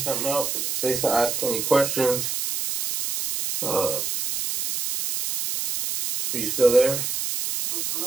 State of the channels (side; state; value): right; noise; hiss, 2 dB below the sound